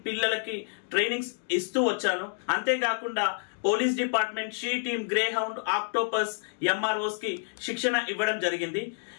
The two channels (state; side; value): silent; right; digital silence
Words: పిల్లలకి ట్రైనింగ్స్ ఇస్తూ వచ్చాను. అంతేకాకుండా police department, she team, grey hound, octopus, MROs కి శిక్షణ ఇవ్వడం జరిగింది.